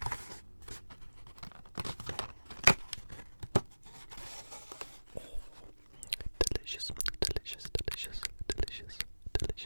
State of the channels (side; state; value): both; inverted; correlation -1.00